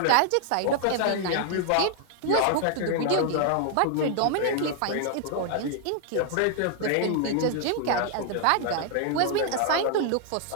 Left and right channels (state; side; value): different; both; correlation 0.00